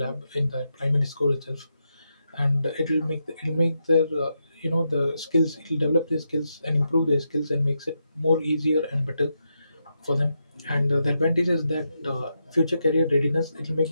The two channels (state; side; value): inverted; both; correlation -0.84